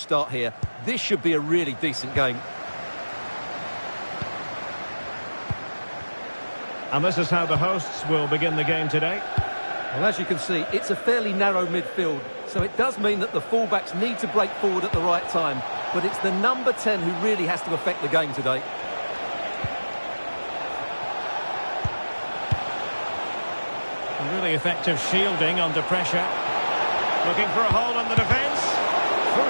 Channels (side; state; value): both; inverted; correlation -1.00